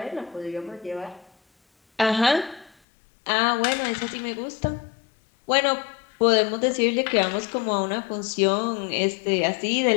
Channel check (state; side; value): drops out; right; at 2.7 s